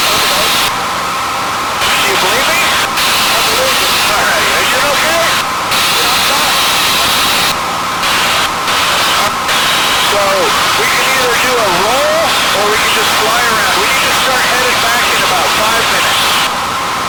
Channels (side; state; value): both; identical; correlation 1.00